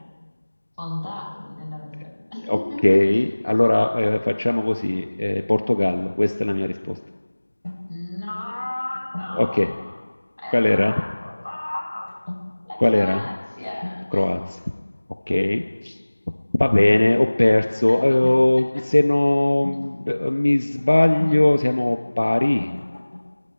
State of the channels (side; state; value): both; inverted; correlation -1.00